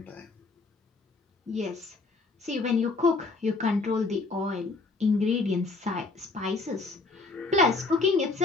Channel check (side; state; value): right; quieter; 3.7 dB